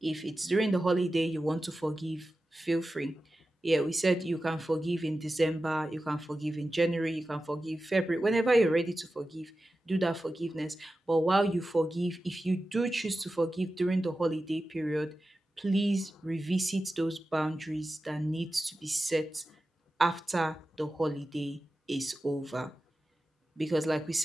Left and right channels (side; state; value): both; normal; correlation 0.93